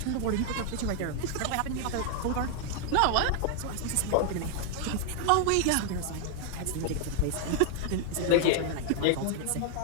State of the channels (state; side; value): different; both; correlation 0.00